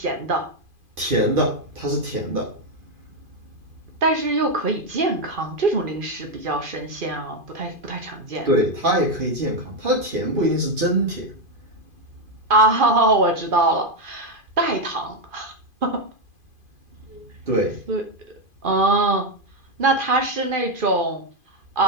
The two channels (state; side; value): late; left; 2.5 ms